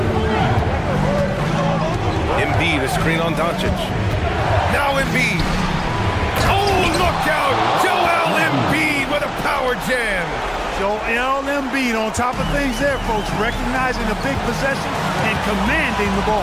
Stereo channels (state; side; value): identical; both; correlation 1.00